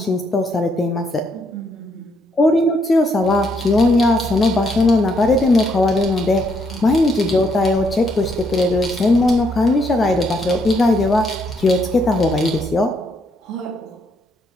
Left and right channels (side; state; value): both; normal; correlation 0.74